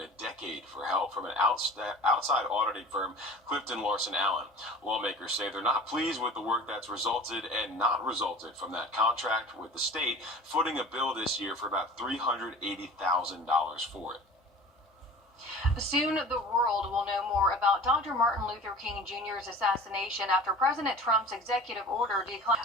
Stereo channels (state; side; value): normal; both; correlation 0.40